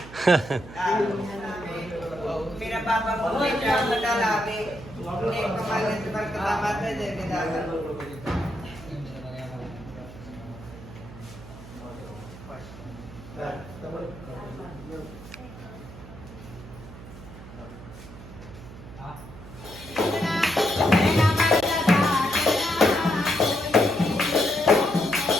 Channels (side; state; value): right; noise; hum, 16 dB below the sound